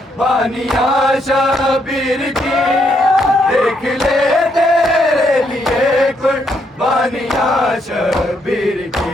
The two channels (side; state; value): both; normal; correlation 0.75